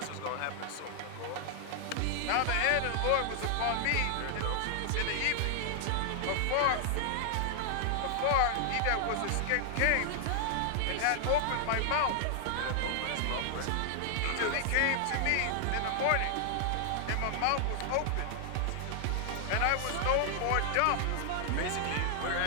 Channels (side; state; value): both; different; correlation 0.00